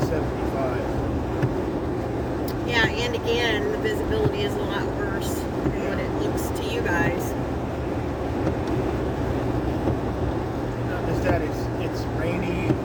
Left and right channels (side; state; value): both; identical; correlation 1.00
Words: 75. Yeah, and again, the visibility is a lot worse than what it looks to you guys. Not just that, it's rainy,